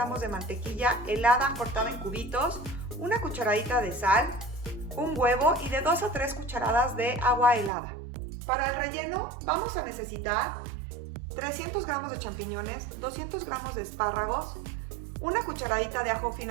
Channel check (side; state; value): left; drops out; at 7.7 s